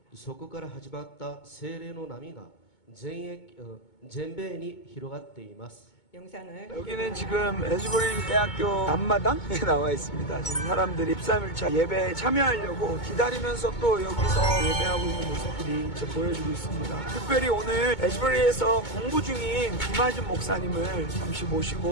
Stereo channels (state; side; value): late; right; 2.2 ms